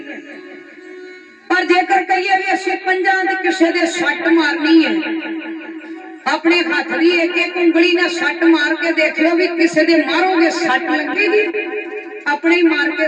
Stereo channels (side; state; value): both; identical; correlation 1.00